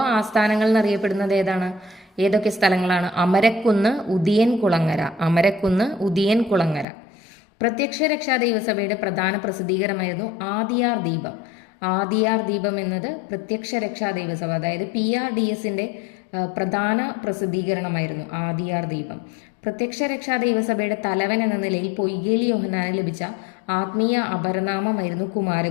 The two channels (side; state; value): right; drops out; at 6.9 s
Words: ആസ്ഥാനങ്ങൾ എന്നറിയപ്പെടുന്നത് ഏതാണ്? ഏതൊക്കെ സ്ഥലങ്ങളാണ്? അമരക്കുന്ന്, ഉദിയൻ കുളങ്ങര. അമരക്കുന്ന്, ഉദിയൻ കുളങ്ങര. പ്രത്യക്ഷ രക്ഷാ ദൈവസഭയുടെ പ്രധാന പ്രസിദ്ധീകരണമായിരുന്നു ആദിയാർ ദീപം. ആദിയാർ ദീപം എന്നത് പ്രത്യക്ഷ രക്ഷാ ദൈവസഭ, അതായത് PRDSന്റെ പ്രധാന പ്രസിദ്ധീകരണമായിരുന്നു ആദിയാർ ദീപം. പ്രത്യക്ഷ രക്ഷാ ദൈവസഭയുടെ തലവൻ എന്ന നിലയിൽ പൊയ്കേൽ യോഹന്നാന് ലഭിച്ച ആത്മീയ അപരനാമമായിരുന്നു